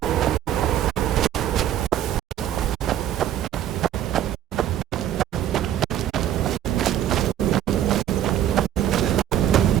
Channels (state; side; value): quieter; left; 11.3 dB